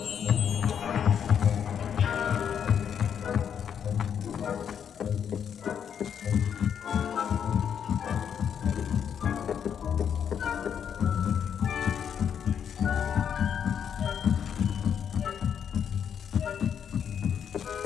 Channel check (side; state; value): right; quieter; 8.1 dB